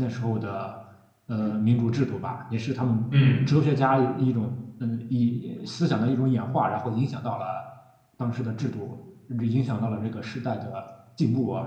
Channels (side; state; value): both; identical; correlation 1.00